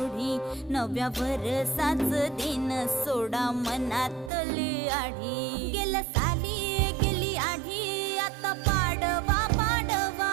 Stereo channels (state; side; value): drops out; left; at 4.3 s